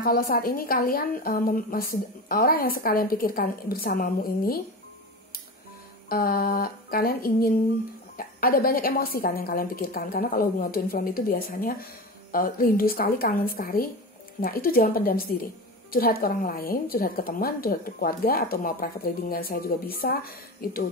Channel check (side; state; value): both; normal; correlation 0.27